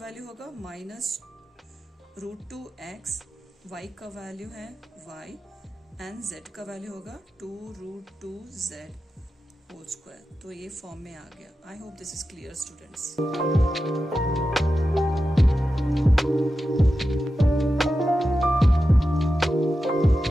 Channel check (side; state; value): both; normal; correlation 0.91